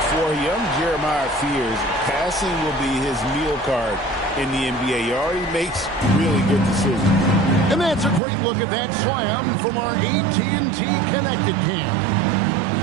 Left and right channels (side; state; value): left; drops out; at 8.2 s